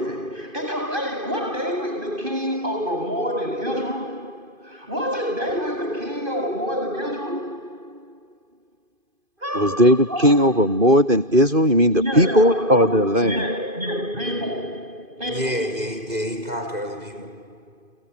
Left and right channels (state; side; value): late; left; 2.5 ms